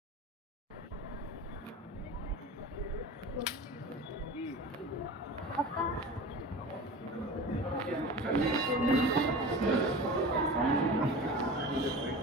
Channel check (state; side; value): normal; both; correlation 0.34